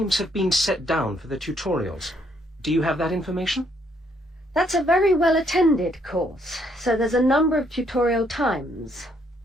have been set down for the tutorials? Do you have that information? That's a very well-attended course, so there's a number of tutorial times.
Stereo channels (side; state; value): both; normal; correlation 0.70